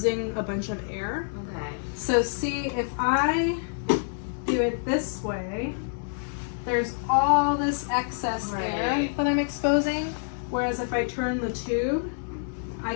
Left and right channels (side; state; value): right; silent; digital silence